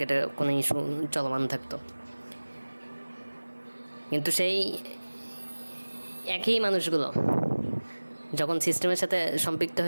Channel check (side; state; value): both; inverted; correlation -1.00